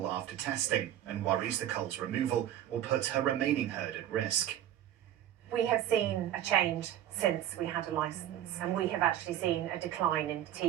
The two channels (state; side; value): quieter; left; 11.8 dB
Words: after testing and worries the cull's removal will put her remaining herd at risk. We have seen a change since we had a licence, and we have actually seen a decline in